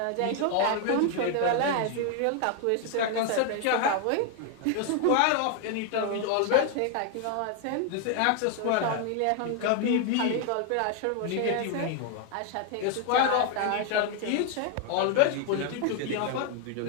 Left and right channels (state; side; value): different; both; correlation 0.00